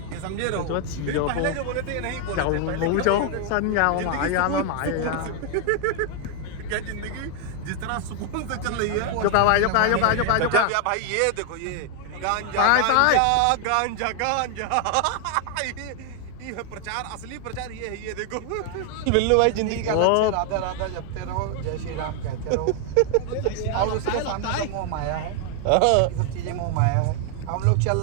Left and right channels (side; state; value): both; different; correlation 0.00